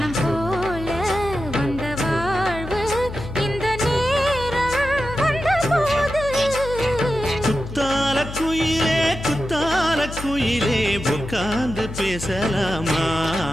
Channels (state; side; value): noise; left; hum, 10 dB below the sound